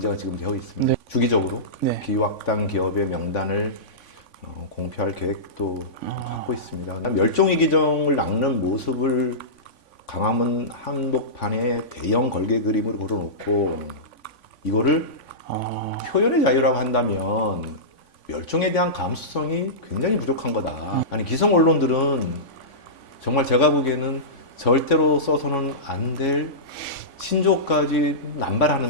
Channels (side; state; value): right; late; 3.5 ms